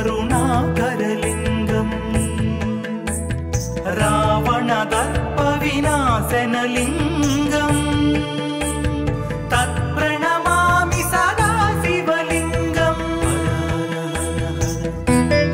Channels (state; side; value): identical; both; correlation 1.00